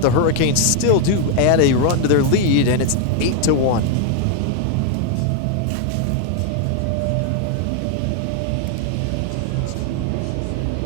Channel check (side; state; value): both; different; correlation 0.00